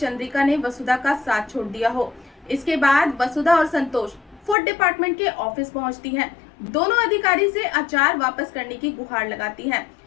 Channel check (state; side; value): drops out; right; at 4.5 s